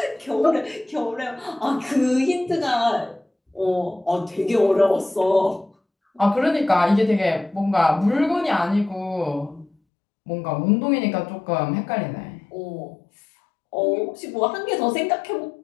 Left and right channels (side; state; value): right; drops out; at 9.7 s